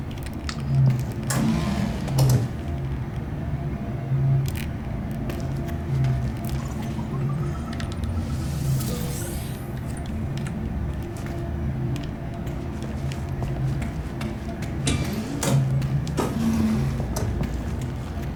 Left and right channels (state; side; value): identical; both; correlation 1.00